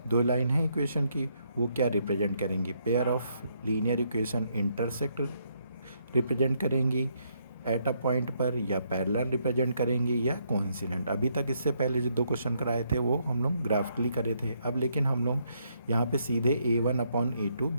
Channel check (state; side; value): inverted; both; correlation -0.74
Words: दो लाइन है इक्वेशन की, वो क्या रिप्रेजेंट करेंगी, pair of linear equation intersect represent करेंगी एट अ पॉइंट पर, या पैरेलल रिप्रेजेंट करेंगी, या कोइंसिडेंट। अभी तक इससे पहले जो दो क्वेश्चन कराए थे वो हम लोग ग्राफिकली करे थे। अब लेकिन हम लोग यहाँ पे सीधे a1/a2